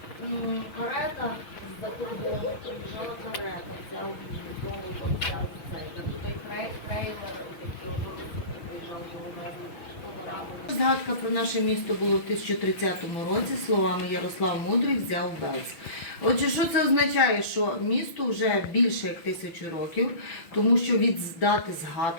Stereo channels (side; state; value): right; late; 6.1 ms